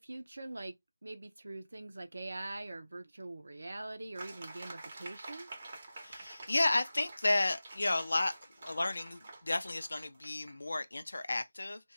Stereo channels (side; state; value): both; inverted; correlation -0.98